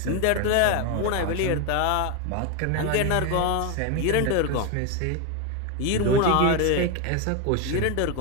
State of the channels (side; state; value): both; different; correlation 0.02